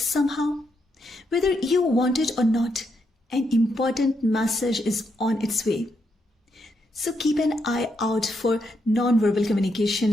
Whether you want it or not, an important message is on its way. So keep an eye out for non-verbal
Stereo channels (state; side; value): normal; both; correlation 0.80